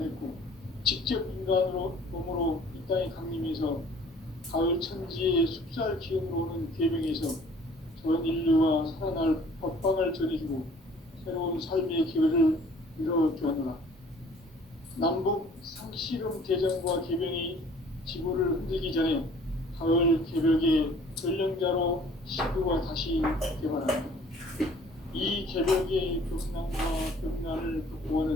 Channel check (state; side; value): normal; both; correlation 0.53